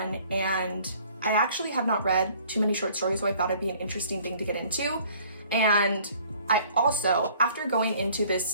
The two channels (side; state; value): both; inverted; correlation -0.56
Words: And I actually have not read too many short stories, so I thought it'd be an interesting thing to get into. And I also, after going into